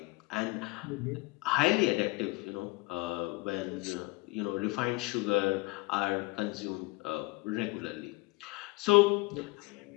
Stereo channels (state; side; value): quieter; right; 24.0 dB